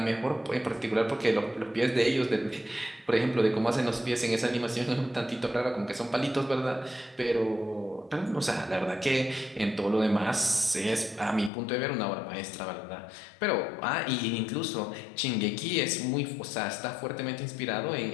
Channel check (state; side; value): drops out; right; at 11.5 s